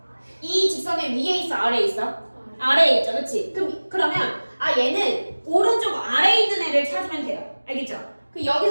이 직선의 위에 있어, 아래에 있어? 아래에 있죠, 그치? 그러면 얘는 오른쪽 아래에 있는 애를 찾으면 돼요. 알겠죠?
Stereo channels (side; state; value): both; inverted; correlation -1.00